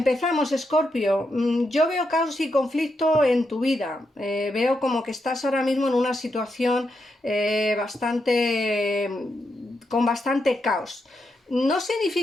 Escorpio. Yo veo caos y conflicto en tu vida. Veo como que estás ahora mismo en una situación con bastante caos. No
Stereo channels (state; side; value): normal; both; correlation 0.83